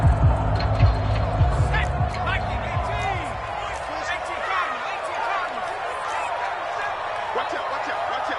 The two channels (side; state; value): both; identical; correlation 1.00